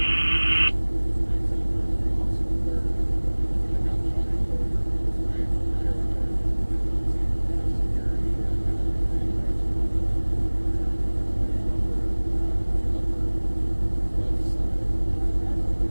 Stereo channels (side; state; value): both; inverted; correlation -1.00